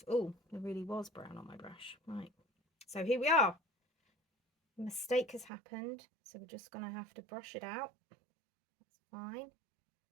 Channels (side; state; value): left; drops out; at 5.5 s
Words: Oh, there really was brown on my brush. Right, so here we are. A mistake has happened, so we're just going to have to brush it out. That's fine.